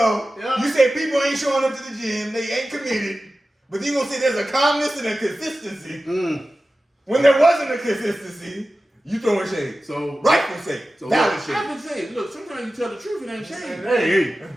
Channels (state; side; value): normal; both; correlation 0.95